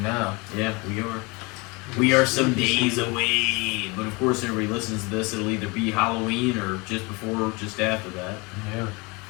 now. Yeah, we are. We are some days away, but of course, everybody listens to this. It'll either be Halloween or just before, or just after that. Yeah.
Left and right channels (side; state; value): right; quieter; 27.0 dB